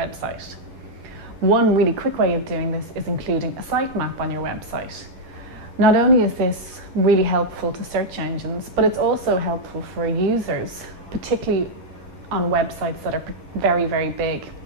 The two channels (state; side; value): late; left; 11 ms